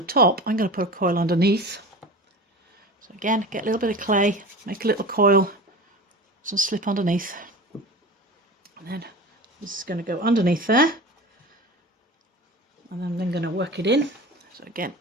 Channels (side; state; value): both; normal; correlation 0.34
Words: I'm going to put a coil underneath. So again, get a little bit of clay, make a little coil, some slip underneath. And then this is going to go underneath there. And then I'm then going to work it in. So again,